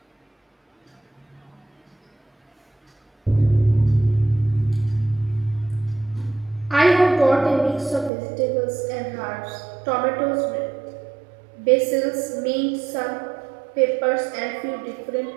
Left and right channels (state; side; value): drops out; left; at 8.1 s